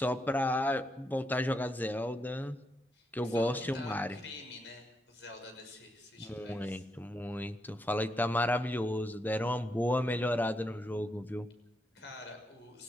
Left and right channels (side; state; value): both; normal; correlation 0.81